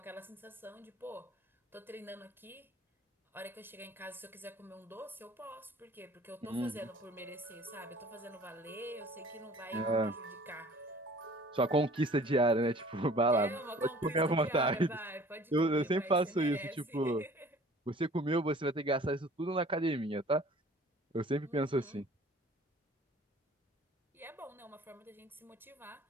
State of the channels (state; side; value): normal; both; correlation 0.49